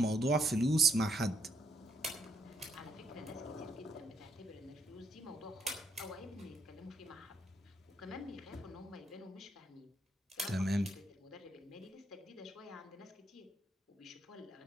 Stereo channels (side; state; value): both; normal; correlation 0.75